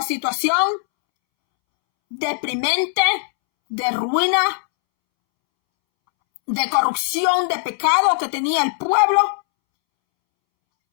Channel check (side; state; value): right; silent; 66 dB below the other